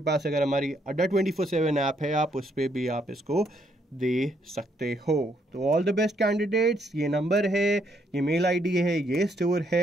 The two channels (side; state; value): both; normal; correlation 0.72